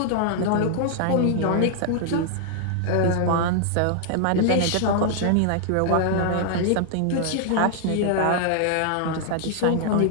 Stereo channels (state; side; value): different; both; correlation -0.01